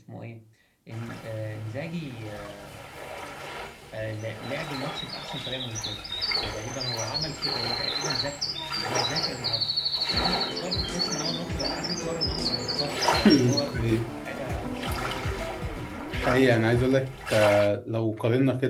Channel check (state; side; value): identical; both; correlation 1.00